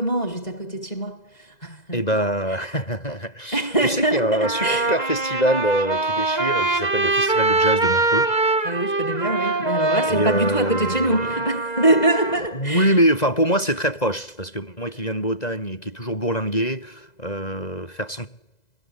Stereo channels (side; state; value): right; late; 2.0 ms